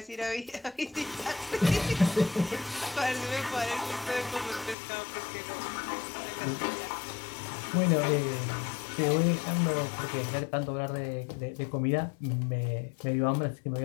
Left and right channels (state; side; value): drops out; right; at 4.8 s